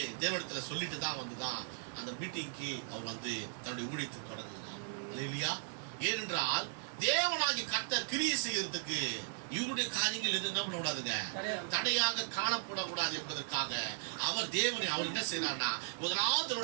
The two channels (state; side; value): silent; left; digital silence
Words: தேவனிடத்துல சொல்லிட்டு தான் வந்துதான் அந்த மீட்டிங்க்கு அவர் வந்து தன்னுடைய ஊழியத்தை தொடங்குகிறார் இல்லையா? ஏனென்றால் தேவனாகி கர்த்தர் கிரியை செய்யறதுக்கு இவருடைய காரியங்கள் எது என்ன பண்ணக்கூடாதுங்க, தடையாக காணப்படக்கூடாது என்பதற்காக அவர் தேவனை அவர் என்ன செய்யறார்னா முதலாவது